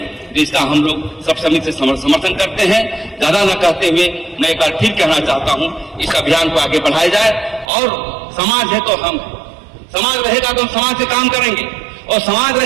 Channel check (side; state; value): left; drops out; at 7.7 s